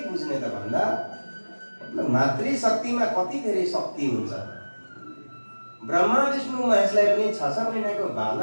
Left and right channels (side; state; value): both; inverted; correlation -1.00